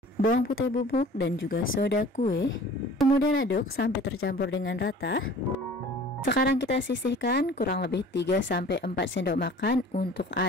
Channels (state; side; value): normal; both; correlation 0.47